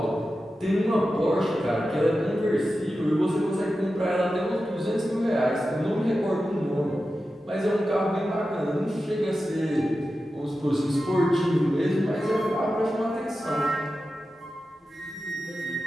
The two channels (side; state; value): both; normal; correlation 0.92